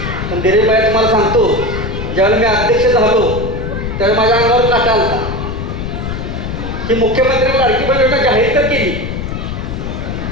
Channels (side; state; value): left; noise; rumble, 5 dB below the sound